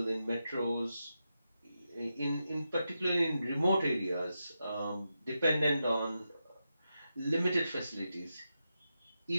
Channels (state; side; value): inverted; both; correlation -0.88